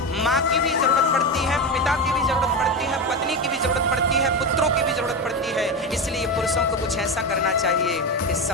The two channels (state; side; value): normal; both; correlation 0.17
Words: माँ की भी जरूरत पड़ती है, पिता की भी जरूरत पड़ती है, पत्नी की भी जरूरत पड़ती है, पुत्रों की भी जरूरत पड़ती है। इसलिए पुरुषों को कुछ ऐसा करना चाहिए कि